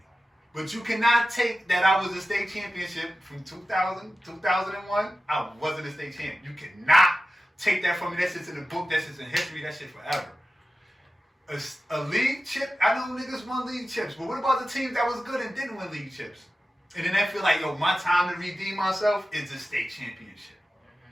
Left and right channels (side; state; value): both; normal; correlation 0.94